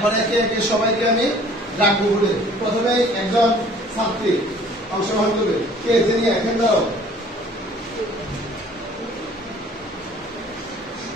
একে একে সবাইকে আমি ডাকবো বলে প্রথমে একজন ছাত্রী অংশগ্রহণ করবে। কে তিনি এখন দাও।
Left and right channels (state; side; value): normal; both; correlation 0.52